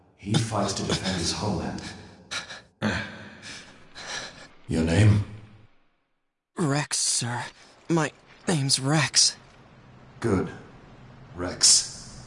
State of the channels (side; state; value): both; identical; correlation 1.00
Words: He fights to defend his homeland. Your name? Rex, sir. My name's Rex. Good.